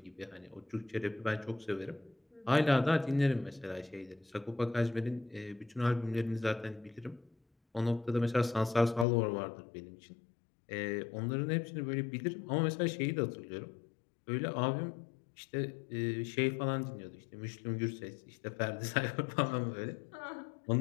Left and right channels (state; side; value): drops out; right; at 9.1 s